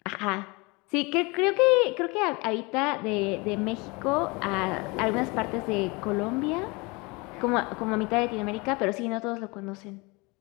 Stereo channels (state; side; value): quieter; right; 26.5 dB